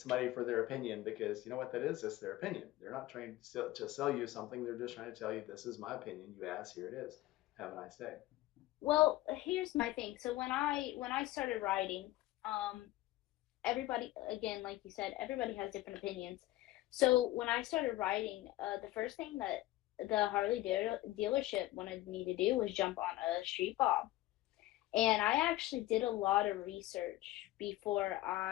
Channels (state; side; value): quieter; right; 16.7 dB